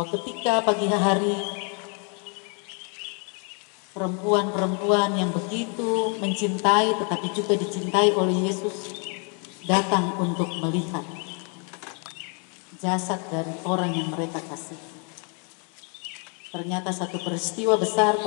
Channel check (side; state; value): right; quieter; 38.1 dB